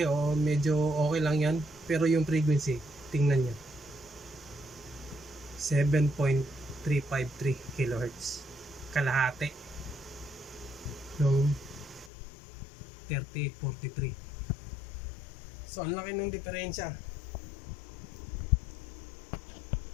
medyo okay lang yan. Pero yung frequency, tingnan nyo. 7.353 kHz. Kalahati. Nung 3843. So, ang laki ng diferensya.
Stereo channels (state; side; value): drops out; right; at 12.1 s